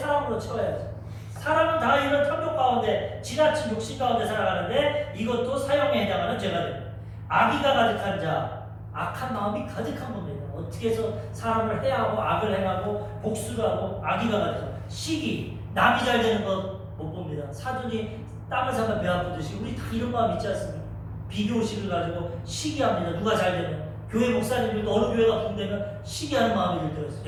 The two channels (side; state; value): both; identical; correlation 1.00